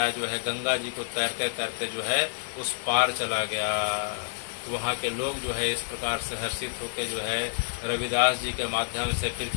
जो है गंगा जी को तैरते तैरते जो है उस पार चला गया। वहाँ के लोग जो है इस प्रकार से हर्षित होकर जो है रविदास जी के माध्यम से फिर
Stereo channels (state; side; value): silent; right; digital silence